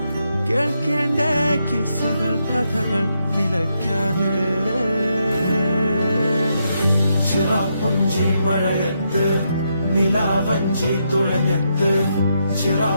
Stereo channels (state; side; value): inverted; both; correlation -0.80